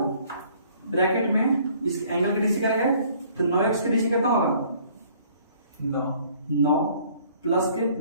ब्रैकेट में इस एंगल की डीसी करेंगे तो 9x की डीसी कितना होगा 9 प्लस के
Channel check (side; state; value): both; inverted; correlation -0.58